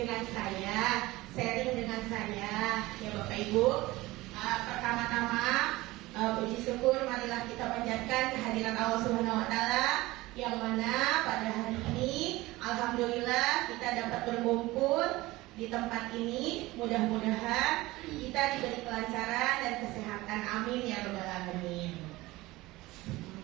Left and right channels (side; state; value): left; quieter; 19.5 dB